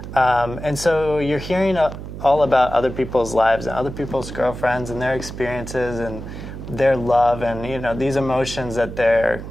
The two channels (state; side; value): noise; right; hum, 10 dB below the sound